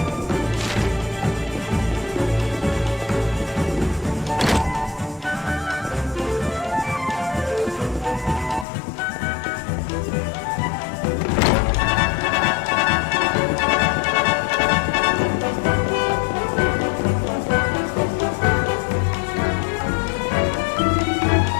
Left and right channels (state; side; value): drops out; right; at 8.7 s